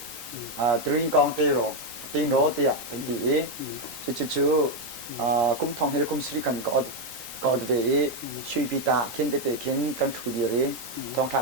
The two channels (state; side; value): late; right; 3.9 ms